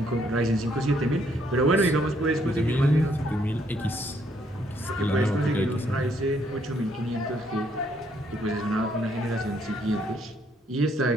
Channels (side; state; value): both; normal; correlation 0.70